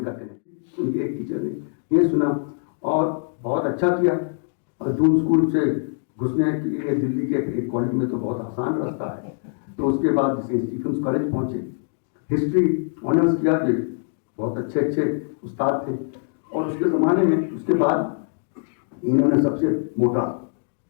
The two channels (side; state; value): right; silent; 63 dB below the other